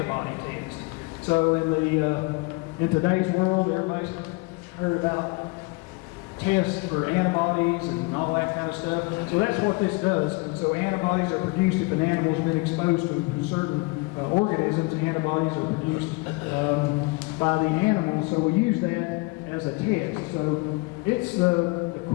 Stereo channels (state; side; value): quieter; right; 26.0 dB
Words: test. So in today's world, everybody's heard about tests for antibodies and all that kind of stuff. So that's what this does. So antibodies are produced if an animal's been exposed to certain organisms. Antibodies are produced by the animal. So we use that as a test. So it's the